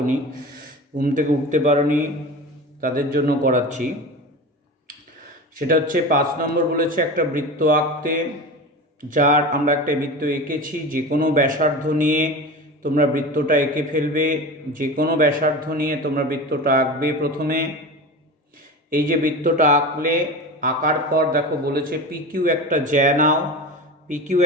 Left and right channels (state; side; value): normal; both; correlation 0.29